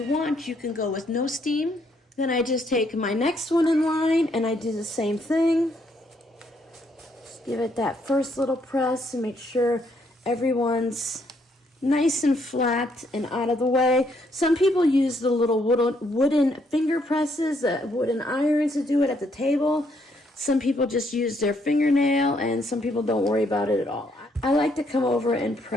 want, you can go with no steam. Then I just take my next one in line and I do the same thing. Just give it that first little press and make sure everyone's nice and flat and out of the way. Some people use the little wooden finger presses, wooden irons to do it at the table. Some people just use their fingernail, and some people don't worry about it at all. I like to come over and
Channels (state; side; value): normal; both; correlation 0.72